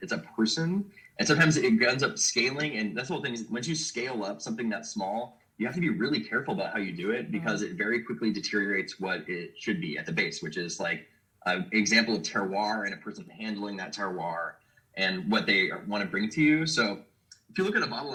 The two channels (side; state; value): both; identical; correlation 1.00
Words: it's a person. And sometimes it ends up scaling, and that's the whole thing is once you scale up something that small, you have to be really careful about how you do it, because it very quickly deteriorates what it should be at the base, which is like an example of terroir and a person handling that terroir and what they want to bring to you. So if you look at a bottle